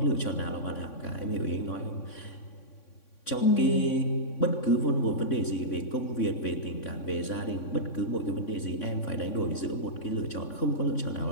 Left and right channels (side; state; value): right; late; 3.6 ms